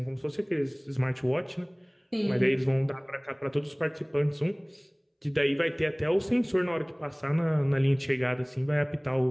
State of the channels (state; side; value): identical; both; correlation 1.00